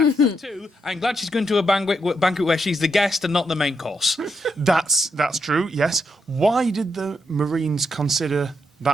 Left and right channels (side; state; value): both; normal; correlation 0.81